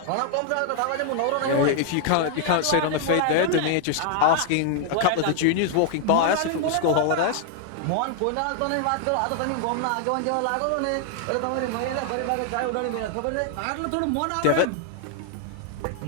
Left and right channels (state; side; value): different; both; correlation 0.00